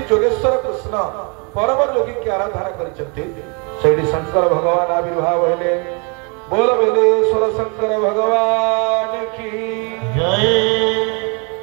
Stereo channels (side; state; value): left; quieter; 34.4 dB